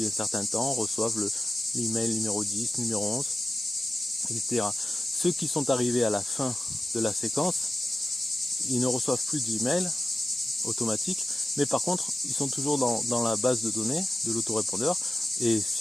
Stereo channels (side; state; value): both; normal; correlation 0.92